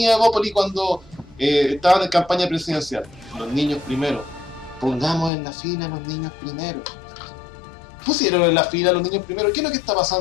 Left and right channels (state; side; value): drops out; right; at 5.3 s